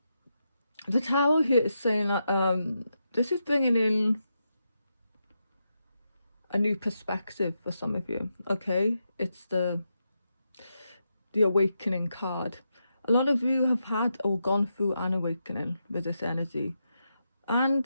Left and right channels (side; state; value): both; inverted; correlation -0.85